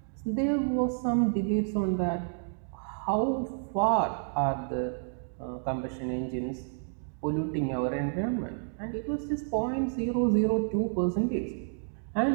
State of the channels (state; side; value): silent; left; digital silence